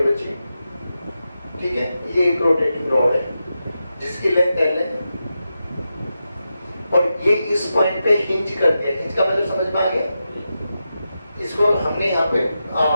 बच्ची। ठीक है, ये एक रोटेटिंग रॉड है जिसकी लेंथ L है और ये इस पॉइंट पे हिंज करती है। हिंज का मतलब समझ में आ गया? इसको हमने यहाँ पे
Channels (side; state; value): both; inverted; correlation -0.89